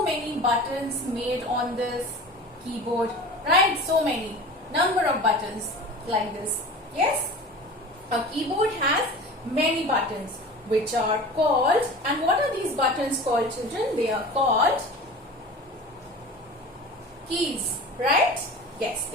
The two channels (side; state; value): both; normal; correlation 0.36